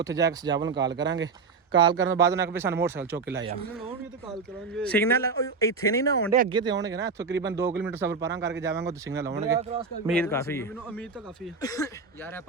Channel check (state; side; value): quieter; left; 4.7 dB